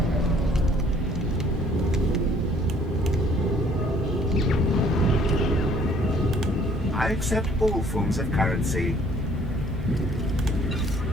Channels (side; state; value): both; normal; correlation 0.59